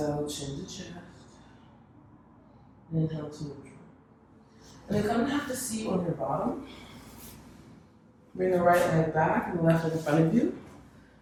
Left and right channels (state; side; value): identical; both; correlation 1.00